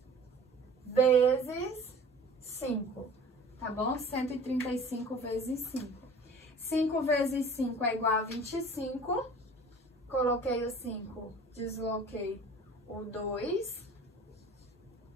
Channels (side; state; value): both; normal; correlation 0.44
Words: vezes 5, tá bom? 135 vezes 5. 5 vezes 5 é igual a 25. Coloquei o 5, desloquei o 2.